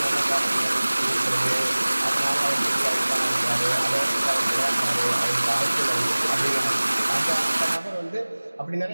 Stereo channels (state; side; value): inverted; both; correlation -1.00